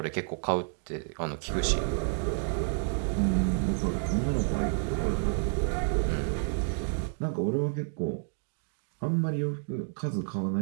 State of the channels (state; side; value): silent; left; 58 dB below the other